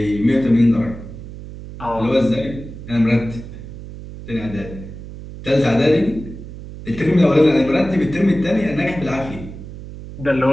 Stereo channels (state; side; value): noise; right; hum, 13 dB below the sound